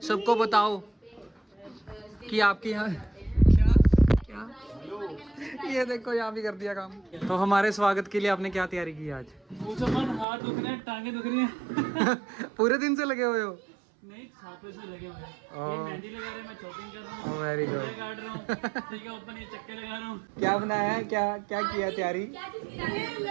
सबको बताओ कि आपके यहाँ क्या क्या। ये देखो यहाँ भी कर दिया काम। तो हमारे स्वागत के लिए आपने क्या तैयारी की आज? हाथ दुख रहे हैं, टांगे दुख रही हैं। पूरे दिन से लगे हुए हो? नहीं, 7 बजे से लगे हुए हैं। ये मेहंदी लगा रहे हैं, मैं चॉपिंग कर रहा हूँ, वेरी गुड। काट रहा हूँ, ठीक है, ऊपर ये चक्के लगा रहा हूँ। क्या बनाया है, क्या क्या किया तैयारी?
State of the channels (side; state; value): left; drops out; at 10.2 s